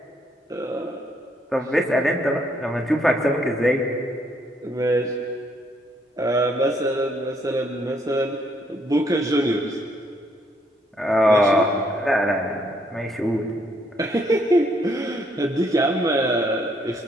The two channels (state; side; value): normal; both; correlation 0.70